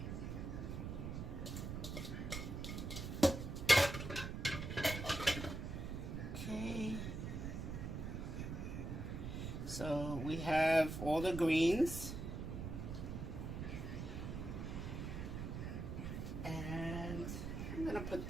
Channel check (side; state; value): right; noise; rumble, 5 dB below the sound